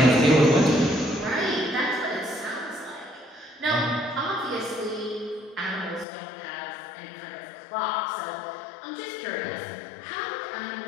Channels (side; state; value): right; drops out; at 6.1 s